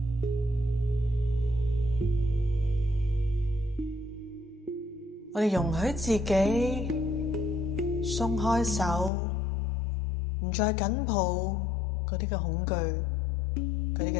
我哋容許自己鬆開手，唔再緊抱嗰啲嘅恐懼、嗰啲嘅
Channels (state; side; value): drops out; right; at 9.1 s